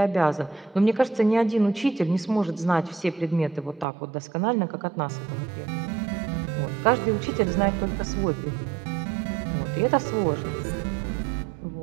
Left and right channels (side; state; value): left; drops out; at 3.9 s